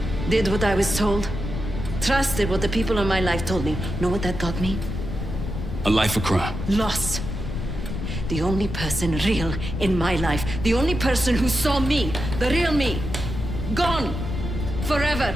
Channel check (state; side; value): noise; left; rumble, 5 dB below the sound